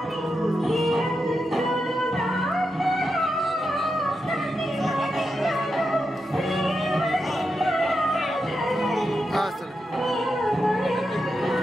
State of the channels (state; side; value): normal; both; correlation 0.87